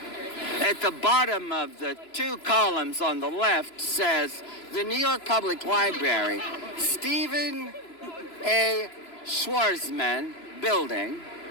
At the bottom of the 2 columns on the left says, the New York Public Library, Stephen A. Schwarzman Building,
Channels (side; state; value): right; late; 3.0 ms